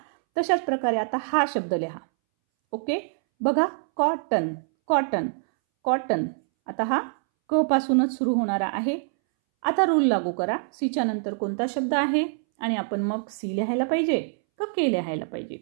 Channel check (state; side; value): silent; left; 62 dB below the other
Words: तशाच प्रकारे आता हा शब्द लिहा. ओके, बघा कॉटन, कॉटन, कॉटन. आता हा क पासूनच सुरू होणारा आहे. आता रूल लागू करा. सीच्या नंतर कोणता शब्द आहे आणि आपण मग सी लिहायला पाहिजे का के लिहायला पाहिजे.